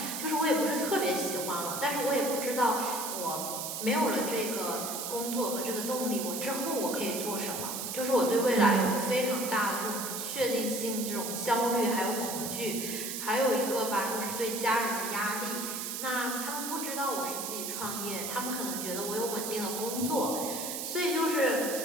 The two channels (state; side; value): noise; right; hiss, 4 dB below the sound